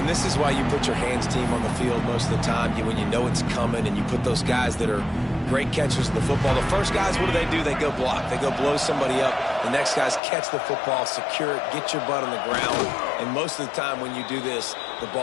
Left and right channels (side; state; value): right; drops out; at 10.2 s